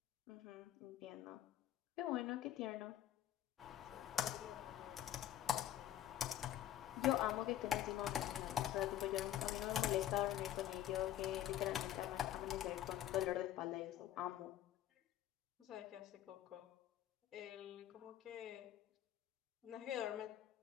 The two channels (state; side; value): quieter; right; 12.1 dB